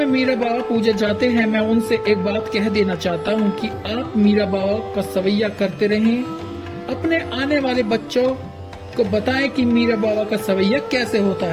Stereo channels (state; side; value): identical; both; correlation 1.00